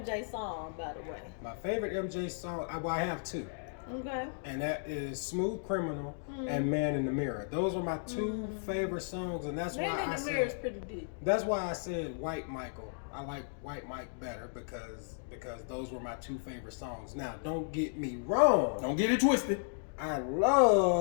song, by the way? My favorite MJ song, I have two, Okay. and that is "Smooth Criminal" and "Man in the Mirror." Those are my two favorite songs, and that's Man why in I the Mirror is said pretty deep. that's why I said White Michael. I like White Mike better because those were my two favorite songs. Now, don't get me wrong. Don't get it twisted. I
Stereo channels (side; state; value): right; silent; digital silence